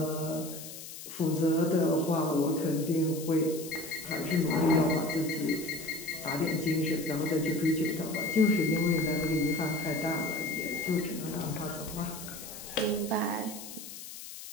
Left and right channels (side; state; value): left; noise; hiss, 12 dB below the sound